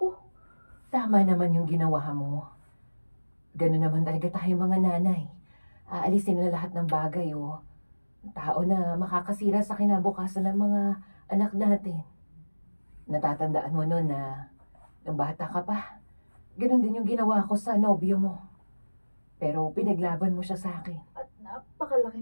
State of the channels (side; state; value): both; inverted; correlation -1.00